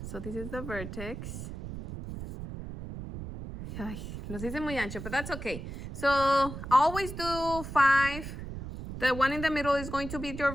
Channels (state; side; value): noise; right; rumble, 9 dB below the sound